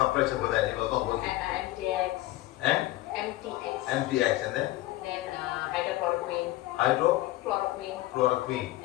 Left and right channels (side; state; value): right; quieter; 17.0 dB